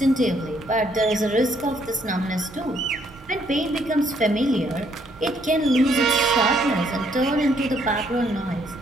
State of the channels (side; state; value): both; normal; correlation 0.69